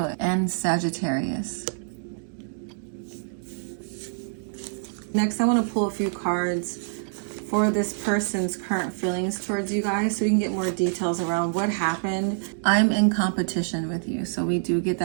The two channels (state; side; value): silent; left; 61 dB below the other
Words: and Sagittarius. Next, I want to pull a few cards for this person's current feelings towards you guys so we can get more details around what happened. I'm in competition with you, so we do get